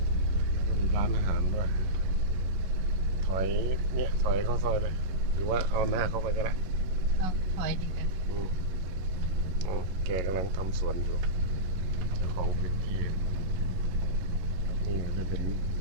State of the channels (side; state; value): left; late; 11 ms